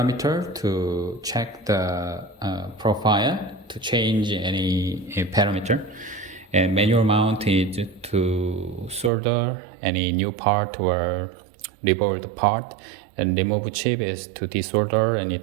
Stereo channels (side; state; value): left; drops out; at 9.1 s